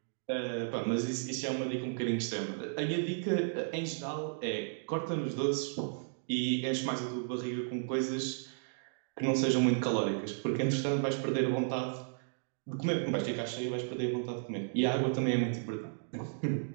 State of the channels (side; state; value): left; silent; digital silence